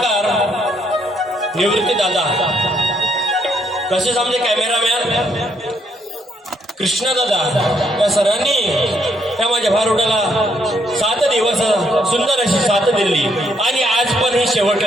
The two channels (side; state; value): both; normal; correlation 0.73